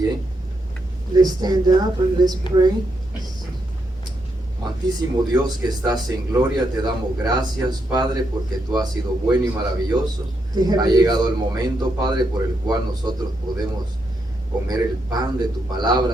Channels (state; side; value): normal; both; correlation 0.80